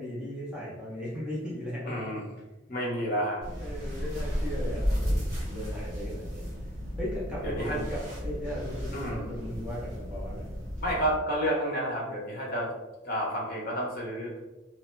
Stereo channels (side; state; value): both; normal; correlation 0.42